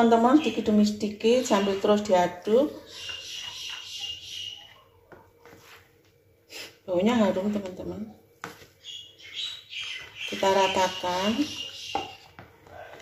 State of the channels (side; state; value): both; identical; correlation 1.00